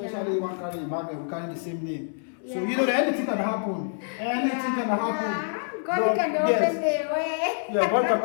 one carry Emmanuel, we carry the same name. So you know that anything can happen. Anything can happen. God can open the way. Yeah, God can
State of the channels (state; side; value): silent; right; 61 dB below the other